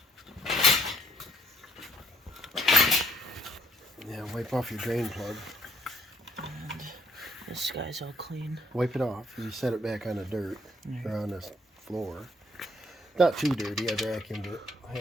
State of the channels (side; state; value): both; normal; correlation 0.68